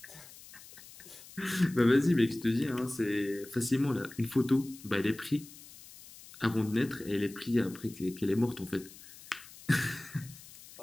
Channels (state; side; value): noise; left; hiss, 19 dB below the sound